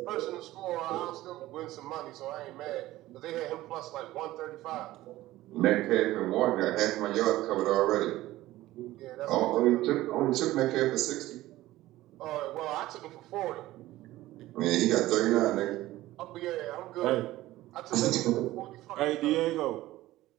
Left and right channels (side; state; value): left; quieter; 16.4 dB